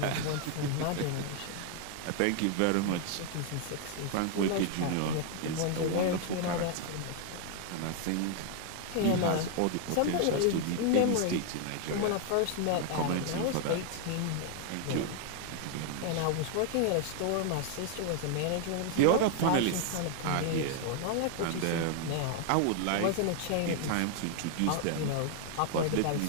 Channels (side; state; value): both; different; correlation 0.00